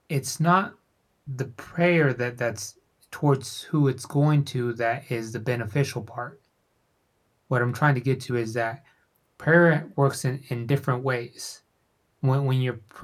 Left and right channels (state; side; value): identical; both; correlation 1.00